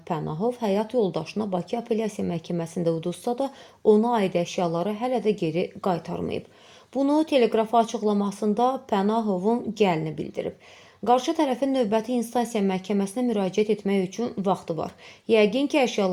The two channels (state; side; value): identical; both; correlation 1.00